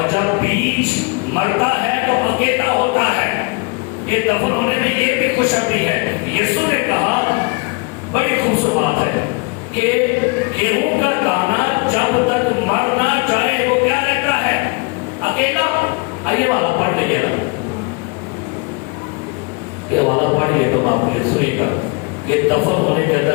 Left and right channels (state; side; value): quieter; right; 30.3 dB